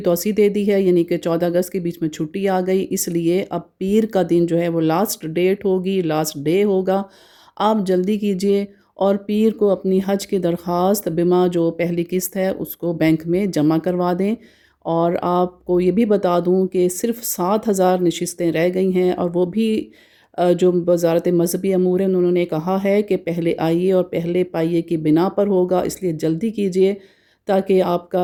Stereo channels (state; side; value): identical; both; correlation 1.00